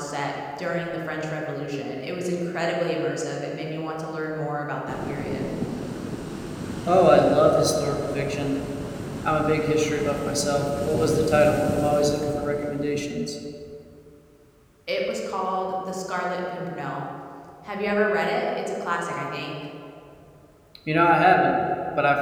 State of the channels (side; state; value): both; identical; correlation 1.00